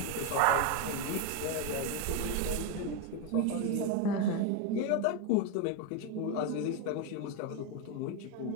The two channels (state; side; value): different; both; correlation 0.02